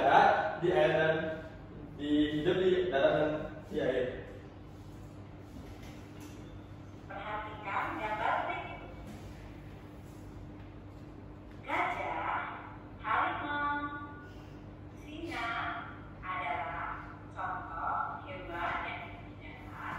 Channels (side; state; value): both; identical; correlation 1.00